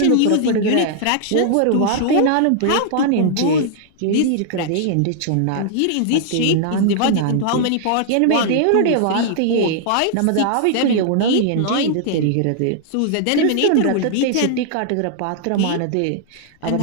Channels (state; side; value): different; both; correlation -0.01